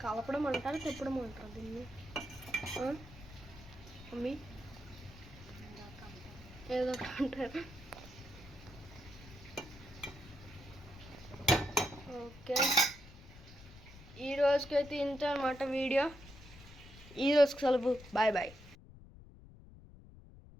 కలపడం అంటారు, తిప్పడం అంటారు దీన్ని. మమ్మీ ఏదో అంటారు. ఓకే, ఈ రోజుకైతే ఇంత అన్నమాట వీడియో. ఈ రోజుకి సెలవు. బాయ్.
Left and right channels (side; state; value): left; noise; rumble, 18 dB below the sound